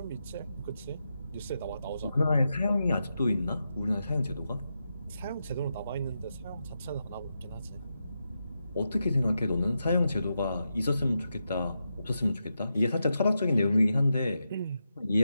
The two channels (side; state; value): both; inverted; correlation -0.87